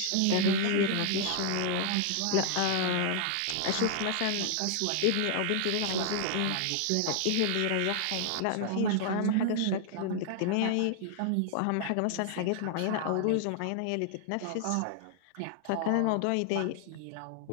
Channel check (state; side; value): different; both; correlation 0.00